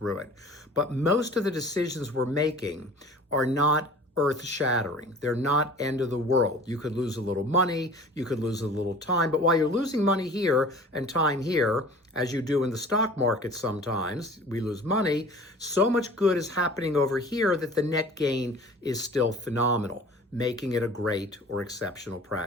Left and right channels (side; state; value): both; normal; correlation 0.44